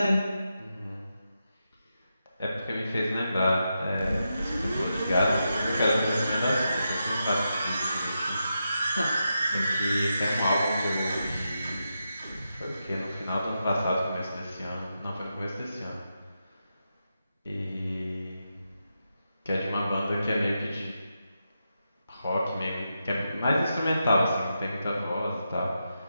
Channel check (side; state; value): both; inverted; correlation -0.87